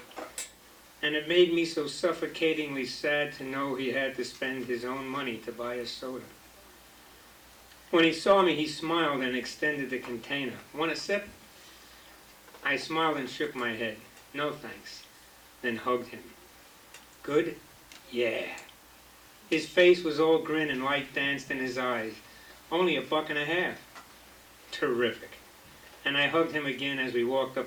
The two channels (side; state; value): both; identical; correlation 1.00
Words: And it made me so suffocatingly sad to know he had to spend his own money to buy a soda. When he saw me, he smiled and extended the container. Want a sip? I smiled and shook my head. No thanks. Then hugged him. Good? Yeah. His face was all grin and light danced in his eyes. Only $1.50. Terrific. And I hugged him again as we walked